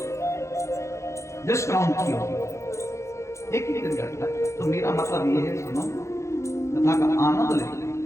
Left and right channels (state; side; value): late; right; 0.14 ms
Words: डिस्काउंट किया, एक ही दिन घटता है। तो मेरा मतलब ये है, सुनो, कथा का आनंद ले।